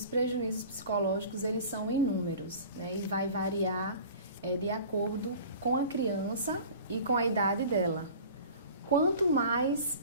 prejuízos psicológicos, eles são inúmeros, né? E vai variar de acordo com a criança e com a idade dela. Quanto mais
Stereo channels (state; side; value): inverted; both; correlation -0.42